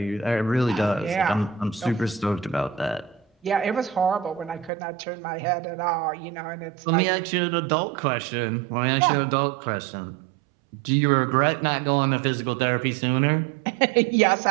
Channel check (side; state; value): left; drops out; at 4.7 s